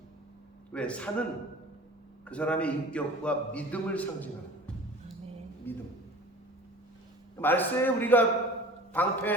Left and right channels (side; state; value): both; normal; correlation 0.41